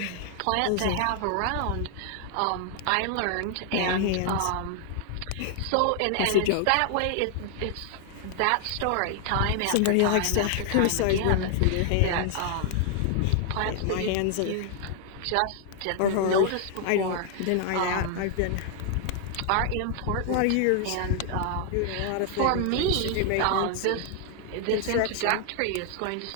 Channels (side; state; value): both; different; correlation 0.00